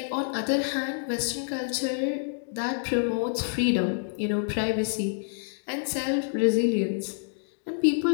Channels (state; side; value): silent; right; digital silence